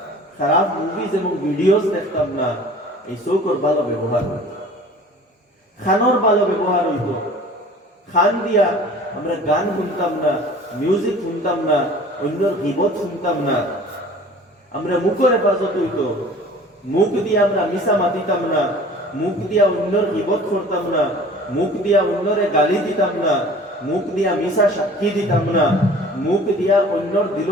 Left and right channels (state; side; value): normal; both; correlation 0.46